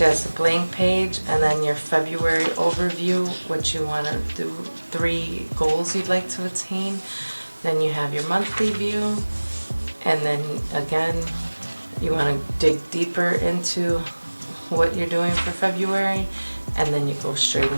has a blank page, and then your February overview, what you want to do, 3 goals you'd like to attain. Then you have your monthly view, and then again, you want to dig deeper into what you're doing for February, and then you go straight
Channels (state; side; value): inverted; both; correlation -1.00